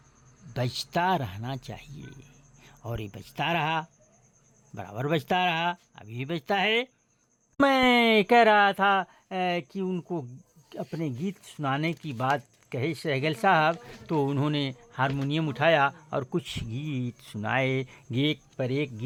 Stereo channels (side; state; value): both; identical; correlation 1.00